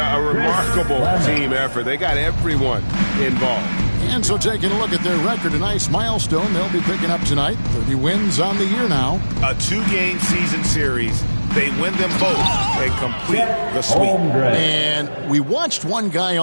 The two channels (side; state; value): both; inverted; correlation -1.00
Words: a remarkable team effort. They got everyone involved. And so taking a look at their record, a nice milestone they'll be picking up tonight. 30 wins on the year now. A 2-game season series. They win them both and complete the sweep. And we watched one guy